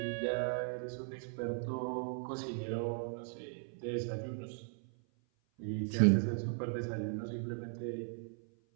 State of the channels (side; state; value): left; silent; 53 dB below the other